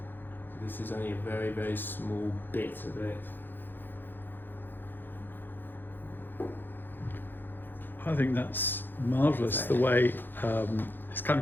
So this is only a very, very small bit of it. I think that's marvellous, the way it's kind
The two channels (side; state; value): right; late; 0.095 ms